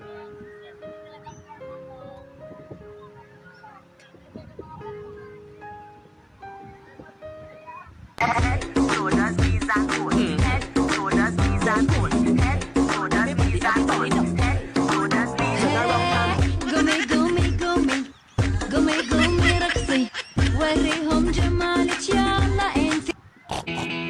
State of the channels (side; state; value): both; identical; correlation 1.00